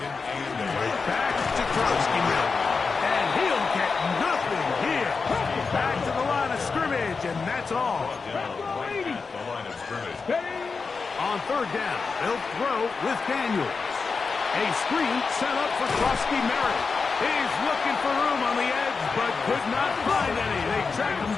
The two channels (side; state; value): right; quieter; 4.8 dB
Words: 8. Back to Krusty Merritt. And he'll get nothing here. Back to the line of scrimmage, and that's all. Right at the line of scrimmage. On third down, they'll throw with Daniels. A screen set up for Krusty Merritt. He's looking for room on the edge, but could not find any. They track him